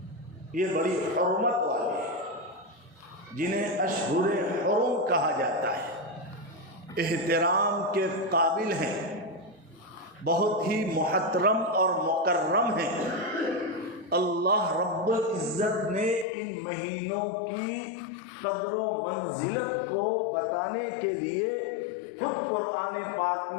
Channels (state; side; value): drops out; right; at 16.2 s